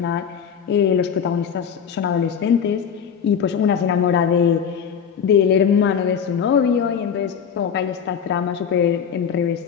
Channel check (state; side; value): quieter; right; 7.5 dB